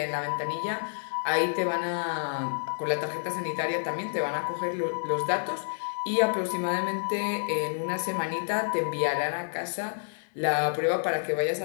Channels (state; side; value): silent; right; digital silence